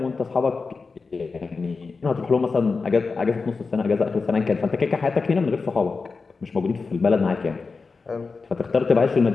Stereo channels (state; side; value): quieter; right; 4.4 dB